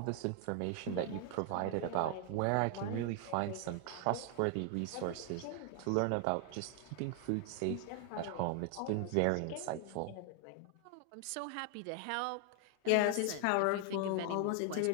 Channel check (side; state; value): both; different; correlation 0.00